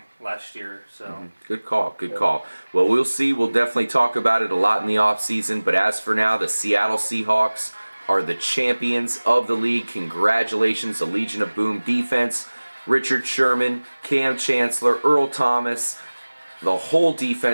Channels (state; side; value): inverted; both; correlation -1.00